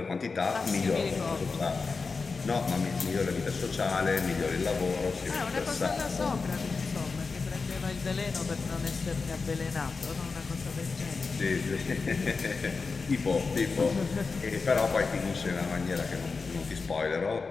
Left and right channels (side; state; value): right; quieter; 4.5 dB